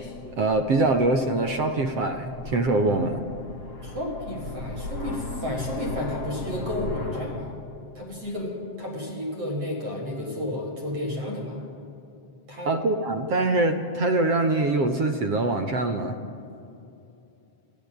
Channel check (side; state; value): left; late; 7.6 ms